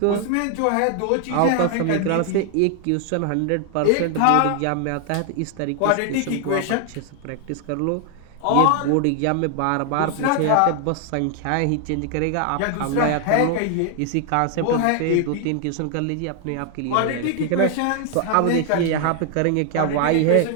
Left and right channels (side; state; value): both; different; correlation 0.00